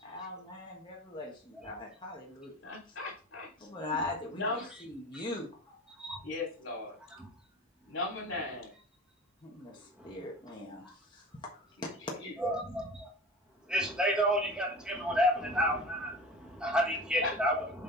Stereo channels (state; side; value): normal; both; correlation 0.36